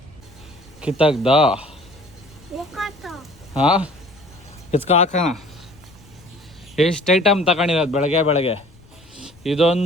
ಕಿತ್ತಾಗ್ದ ಹಾಂ ಕಿತ್ಕ ಹಾಕೋಣ. ಎಷ್ಟು ಐಟಮ್ ತಗೊಂಡಿರೋದು ಬೆಳಗ್ಗೆ ಬೆಳಗ್ಗೆ.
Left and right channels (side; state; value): left; noise; rumble, 26 dB below the sound